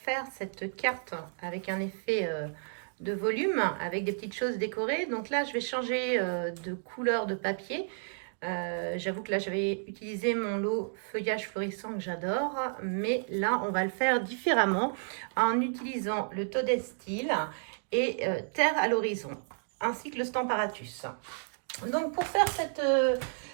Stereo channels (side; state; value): left; silent; digital silence